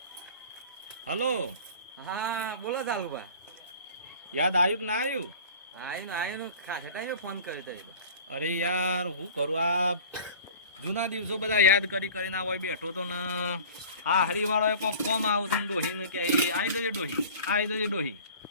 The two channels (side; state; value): both; inverted; correlation -0.42